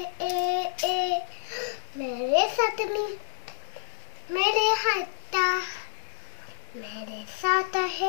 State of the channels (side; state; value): right; silent; digital silence